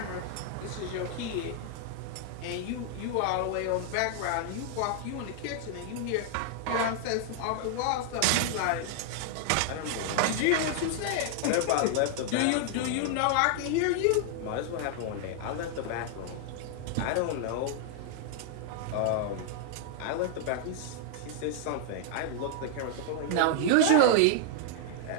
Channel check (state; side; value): different; both; correlation 0.00